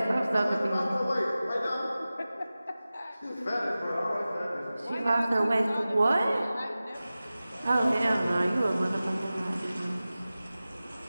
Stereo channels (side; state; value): both; inverted; correlation -0.96